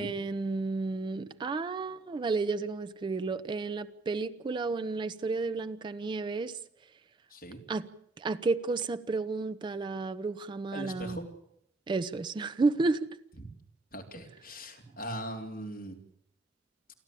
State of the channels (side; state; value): left; quieter; 3.2 dB